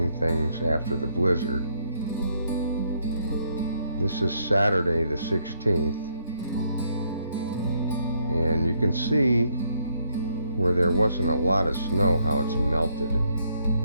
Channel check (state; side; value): inverted; both; correlation -0.72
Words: things after the blizzard. This is Saturday the 16th, and you can see where there wasn't a lot of snow how it's melted.